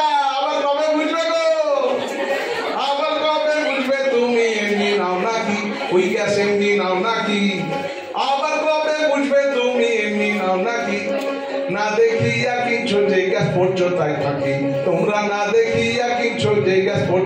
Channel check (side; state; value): both; identical; correlation 1.00